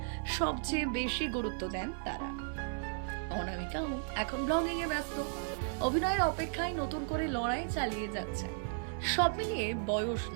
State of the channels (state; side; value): silent; left; 55 dB below the other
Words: সবচেয়ে বেশি গুরুত্ব দেন তারা। অনামিকাও এখন ব্লগিং এ ব্যস্ত, অভিনয়ের অপেক্ষায় নতুন করে লড়াই চালিয়ে যাচ্ছে। সব মিলিয়ে বয়স